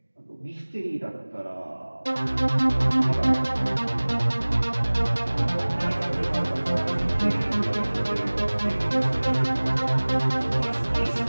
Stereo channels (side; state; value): both; inverted; correlation -1.00